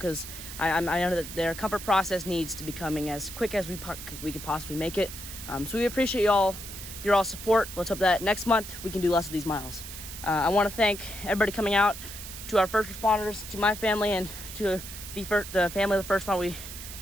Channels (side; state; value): right; noise; hiss, 11 dB below the sound